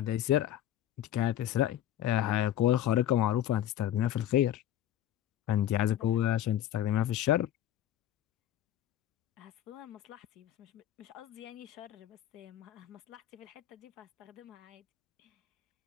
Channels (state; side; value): quieter; right; 11.7 dB